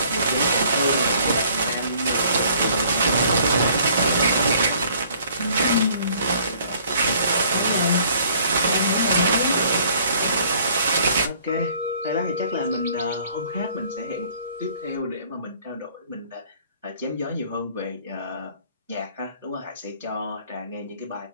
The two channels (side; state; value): both; inverted; correlation -0.58